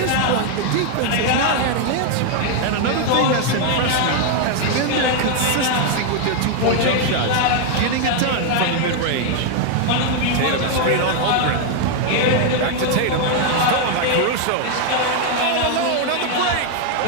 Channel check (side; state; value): both; different; correlation 0.00